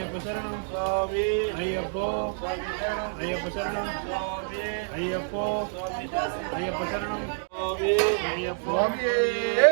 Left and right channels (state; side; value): silent; left; digital silence